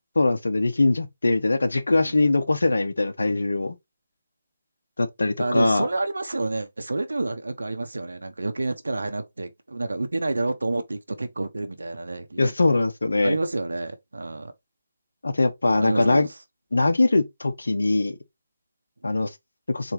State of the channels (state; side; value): inverted; both; correlation -0.96